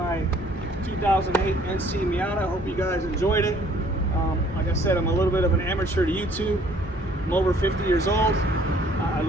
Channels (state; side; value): normal; both; correlation 0.59